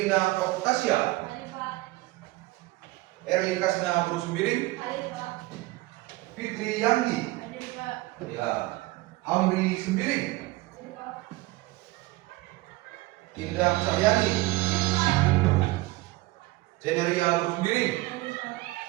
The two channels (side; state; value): left; quieter; 20.0 dB